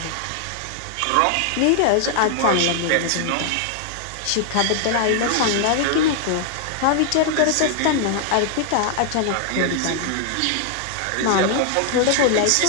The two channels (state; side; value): different; both; correlation 0.00